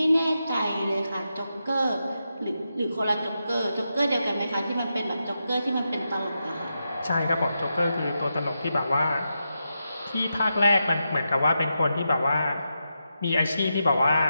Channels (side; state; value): both; inverted; correlation -0.87